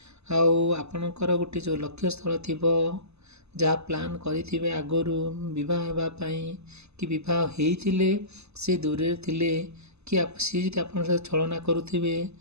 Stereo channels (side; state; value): left; late; 0.80 ms